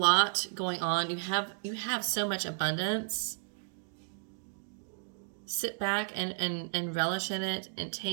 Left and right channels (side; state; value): left; silent; 56 dB below the other